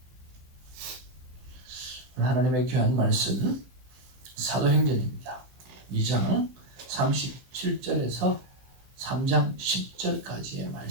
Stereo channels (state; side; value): late; left; 16 ms